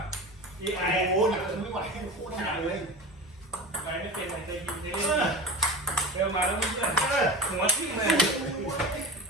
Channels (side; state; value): both; normal; correlation 0.32